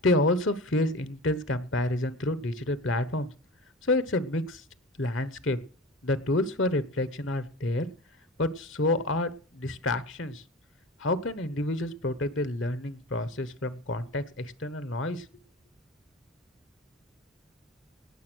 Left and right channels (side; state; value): both; normal; correlation 0.33